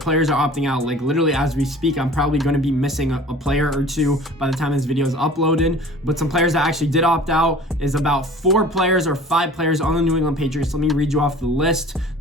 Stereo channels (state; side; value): normal; both; correlation 0.45